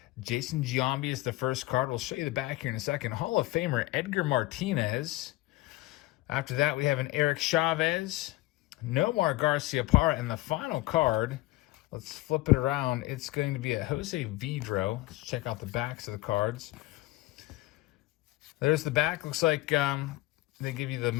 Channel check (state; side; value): quieter; right; 18.4 dB